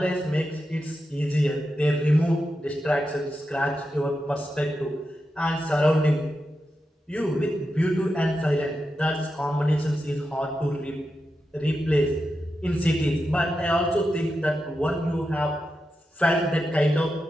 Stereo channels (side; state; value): both; normal; correlation 0.88